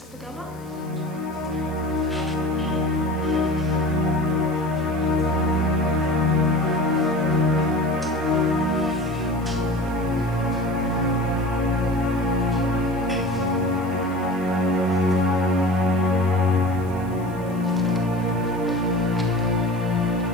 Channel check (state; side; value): noise; left; hiss, 26 dB below the sound